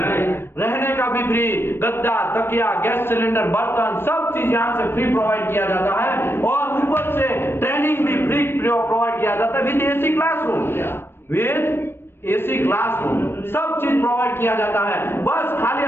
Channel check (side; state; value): right; late; 0.11 ms